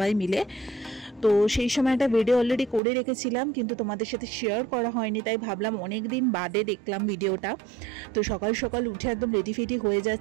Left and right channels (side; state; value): left; drops out; at 2.8 s